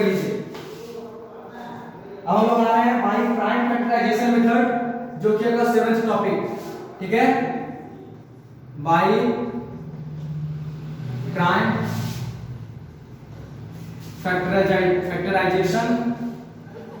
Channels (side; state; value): both; identical; correlation 1.00